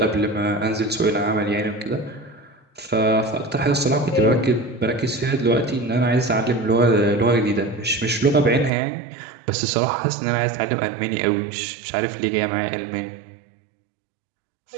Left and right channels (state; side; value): drops out; left; at 8.7 s